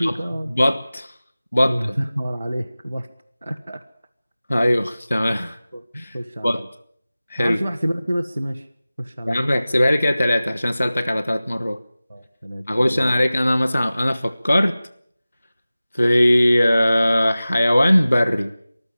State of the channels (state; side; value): inverted; both; correlation -0.97